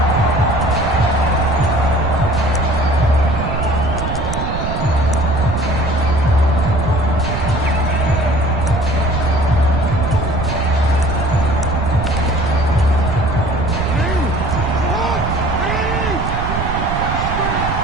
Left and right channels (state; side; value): noise; right; rumble, 3 dB below the sound